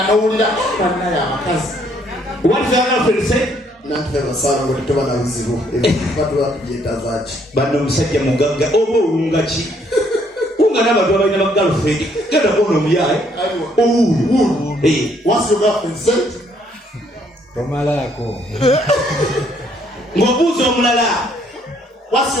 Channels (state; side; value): normal; both; correlation 0.67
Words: n'owulira bannaye abakazi what's your girlfriend said nantufe basaala ngo tetuba na buzibu batuba tugyeta zaaki banno omusajja mugagga oba owunga ki wunga n'abantu abalina ba girlfriend genda kuona omuyaye owuulu what's your girlfriend said tomalako ng'obuuza omulala what's